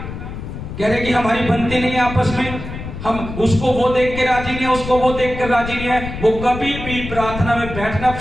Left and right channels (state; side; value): noise; left; rumble, 9 dB below the sound